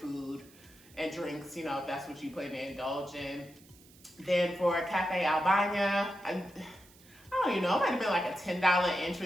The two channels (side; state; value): right; noise; hiss, 25 dB below the sound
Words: and drinks, if that's what you plan to indulge in. Then for Cafe Albania, I don't even know, it might have been like a $10